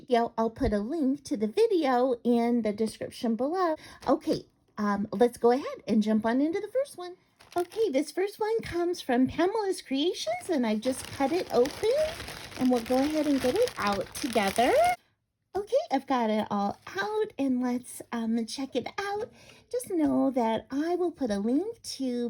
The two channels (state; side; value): identical; both; correlation 1.00